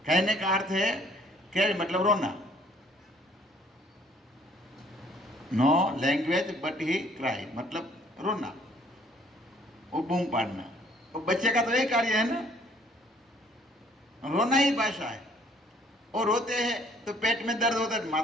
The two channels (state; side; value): normal; both; correlation 0.60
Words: कहने का अर्थ है क्या? मतलब रोना। No language but he cry, मतलब रोना, वो बूम पाड़ना। वो बच्चे का तो यही कार्य है ना, रोना ही भाषा है। और रोते हैं तो पेट में दर्द होता है, माँ